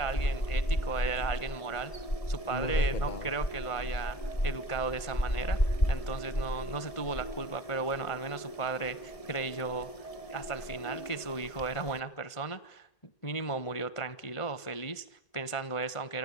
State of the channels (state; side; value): late; right; 1.5 ms